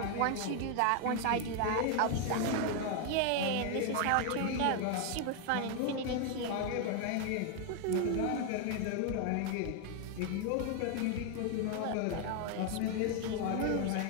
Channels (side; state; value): both; different; correlation 0.01